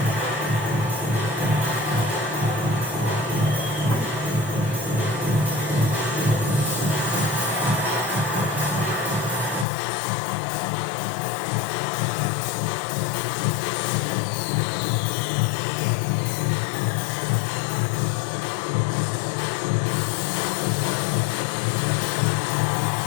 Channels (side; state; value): right; drops out; at 9.7 s